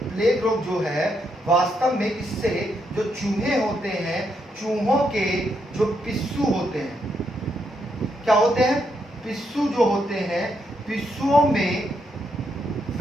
प्लेग रोग जो है वास्तव में इससे जो चूहे होते हैं, चूहों के जो पिस्सू होते हैं, क्या होते हैं, पिस्सू जो होते हैं, पिस्सुओं में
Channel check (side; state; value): both; normal; correlation 0.78